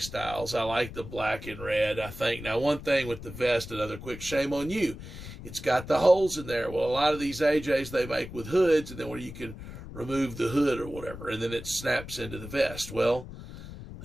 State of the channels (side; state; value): left; noise; rumble, 12 dB below the sound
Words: Styles. I like the black and red, I think. Now, one thing with the vest, another quick shame on you, it's got the holes in there. Well, a lot of these AJs they make with hoods, and then where you can remove the hood or whatever, and then it snaps into the vest. Well,